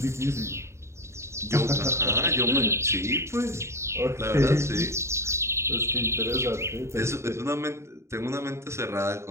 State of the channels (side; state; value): left; late; 0.13 ms